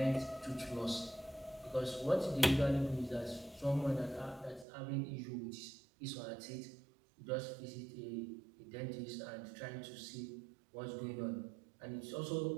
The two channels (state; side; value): drops out; left; at 4.7 s